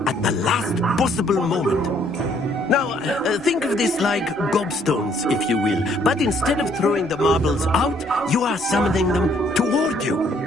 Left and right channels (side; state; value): both; normal; correlation 0.65